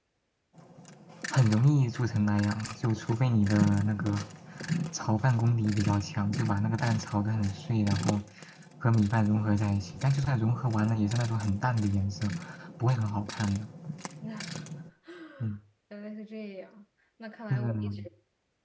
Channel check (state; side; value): identical; both; correlation 1.00